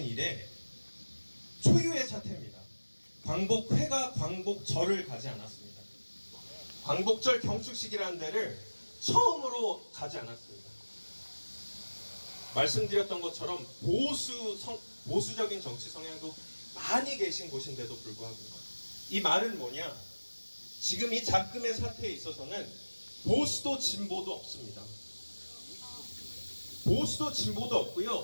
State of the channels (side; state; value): both; inverted; correlation -1.00